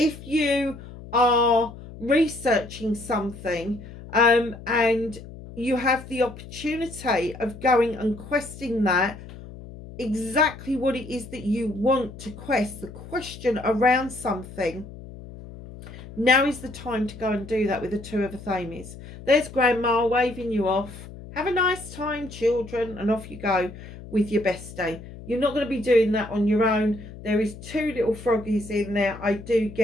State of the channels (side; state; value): left; noise; hum, 15 dB below the sound